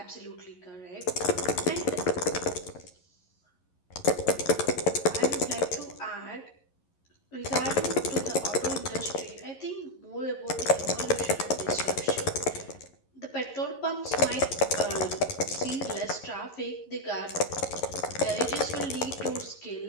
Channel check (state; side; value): late; right; 11 ms